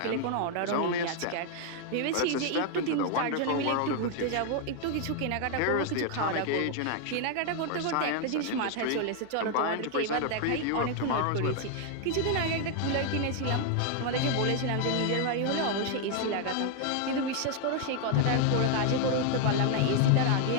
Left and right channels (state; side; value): different; both; correlation 0.00